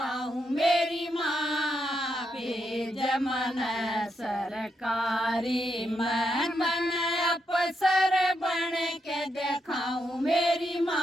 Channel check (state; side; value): normal; both; correlation 0.81